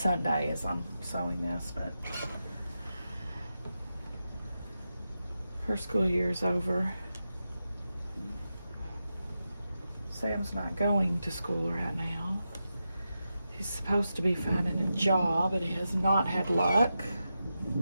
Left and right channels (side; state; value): both; inverted; correlation -0.89